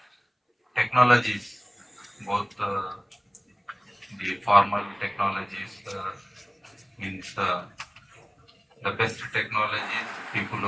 technologies, both the formal technologies means the best technologies, people who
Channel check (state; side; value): identical; both; correlation 1.00